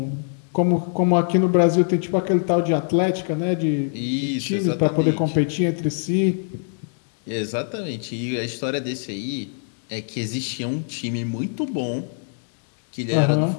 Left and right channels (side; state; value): right; silent; digital silence